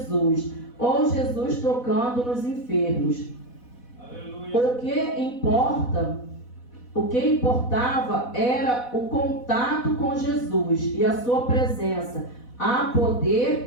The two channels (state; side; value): late; right; 4.1 ms